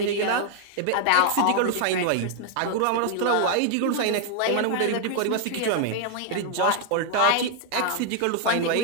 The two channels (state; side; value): different; both; correlation 0.00